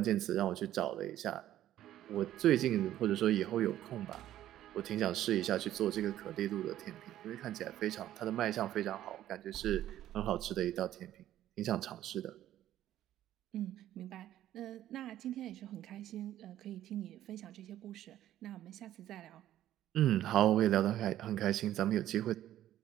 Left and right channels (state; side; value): quieter; left; 12.7 dB